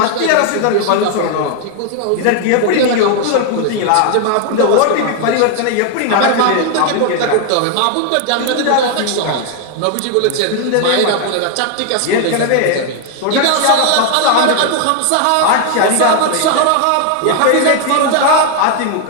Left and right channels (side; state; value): both; different; correlation 0.00